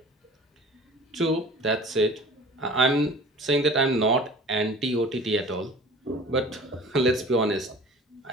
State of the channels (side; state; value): both; normal; correlation 0.43